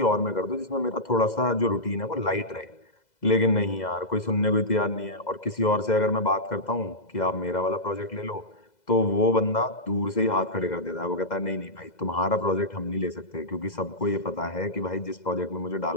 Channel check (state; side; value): late; right; 2.0 ms